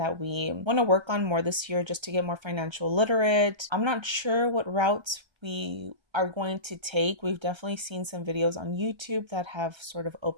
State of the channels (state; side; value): late; left; 1.3 ms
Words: we want to work on more this year, just to get more financial literate. I'm not sure what routes we are going to take. We've definitely seen some videos on YouTube that have sort of